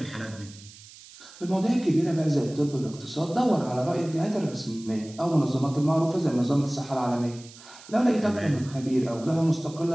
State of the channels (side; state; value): right; noise; hiss, 20 dB below the sound